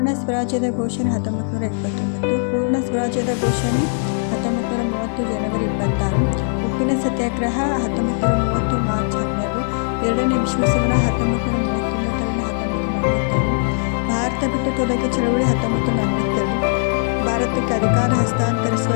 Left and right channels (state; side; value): silent; right; digital silence